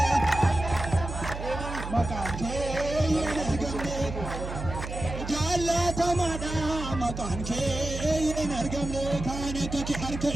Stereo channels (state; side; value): noise; right; hum, 7 dB below the sound